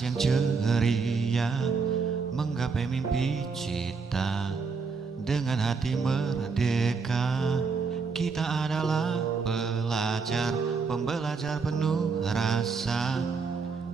yang ceria, menggapai mimpi cita dengan hati merdeka. Kita adalah pelajar, pembelajar penuh rasa,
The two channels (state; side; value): quieter; left; 4.9 dB